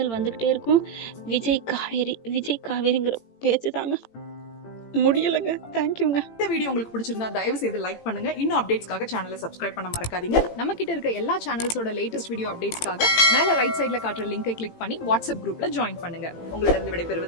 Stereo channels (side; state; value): right; late; 18 ms